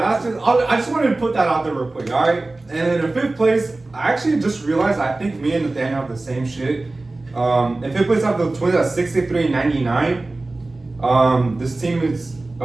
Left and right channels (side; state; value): left; quieter; 3.1 dB